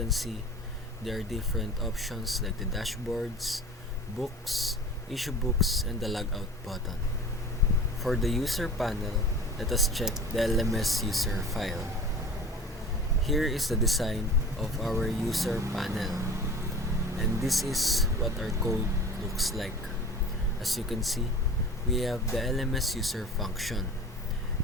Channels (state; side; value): normal; both; correlation 0.40